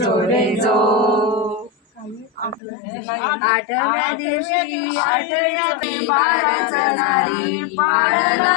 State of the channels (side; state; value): right; drops out; at 2.6 s